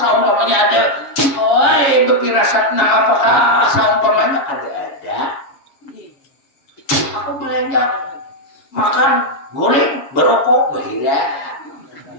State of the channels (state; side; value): late; right; 7.4 ms